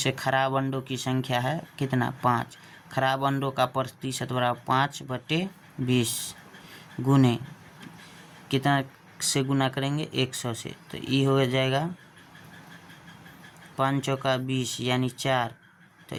खराब अंडों की संख्या है कितना 5, खराब अंडों का प्रतिशत बराबर 5/20 गुने कितना से गुना करेंगे 100 से, तो ये हो जाएगा 5 चौका 20, यानी 4, तो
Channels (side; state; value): both; identical; correlation 1.00